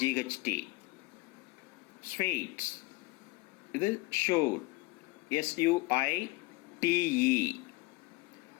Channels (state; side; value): quieter; right; 23.0 dB